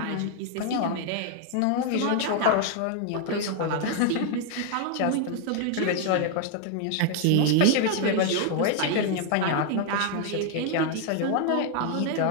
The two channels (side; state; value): both; different; correlation 0.00